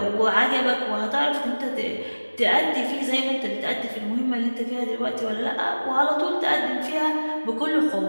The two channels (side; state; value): both; inverted; correlation -1.00